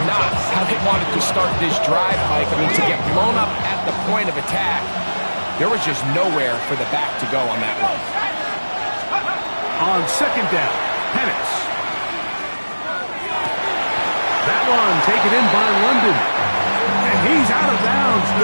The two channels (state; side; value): inverted; both; correlation -1.00